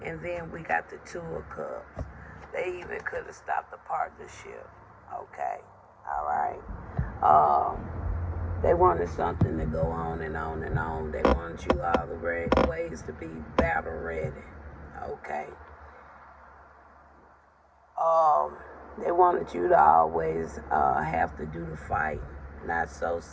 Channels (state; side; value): identical; both; correlation 1.00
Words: And then we got the 2 of Cups. They even could have stopped the partnership. Okay. All right. They wanted something to go on and on and on. They wanted you all the ways to be battle ready. Okay. They wanted you to always have to do the fight. Not so,